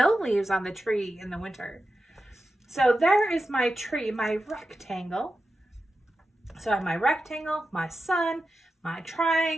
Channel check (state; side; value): normal; both; correlation 0.91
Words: leaves on the tree in the winter. So there is my tree, my rectangle. So I have my rectangle, my sun, my